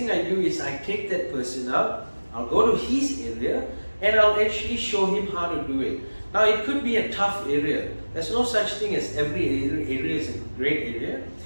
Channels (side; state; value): both; inverted; correlation -1.00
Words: I do is I take that person out, I'll go to his area and I'll actually show him how to do it. Now it could be a tough area. There's no such thing as every area is a great area.